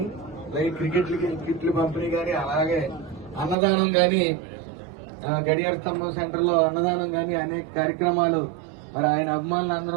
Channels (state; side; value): drops out; left; at 3.6 s